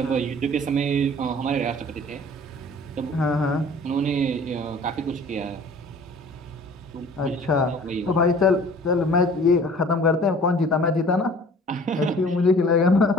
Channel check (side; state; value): both; normal; correlation 0.49